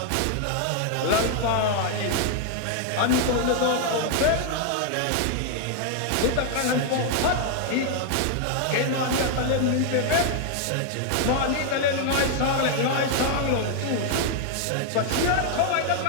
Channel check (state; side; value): different; both; correlation 0.00